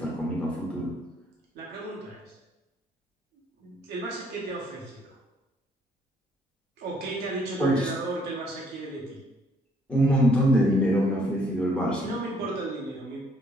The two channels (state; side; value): normal; both; correlation 0.65